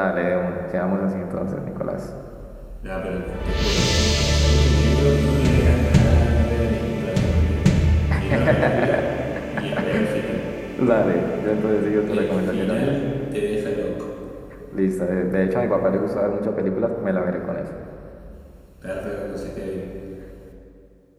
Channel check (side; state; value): both; identical; correlation 1.00